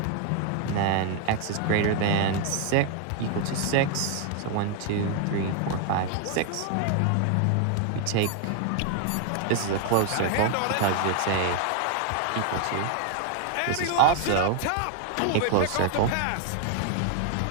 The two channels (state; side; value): different; both; correlation 0.00